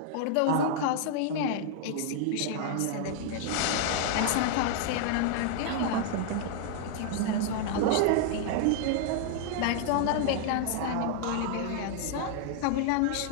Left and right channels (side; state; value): both; different; correlation -0.01